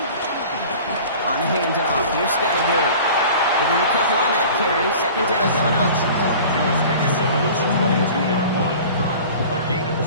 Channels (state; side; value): inverted; both; correlation -0.42